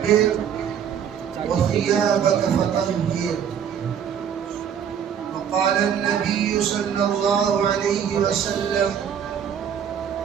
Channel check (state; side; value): quieter; left; 8.3 dB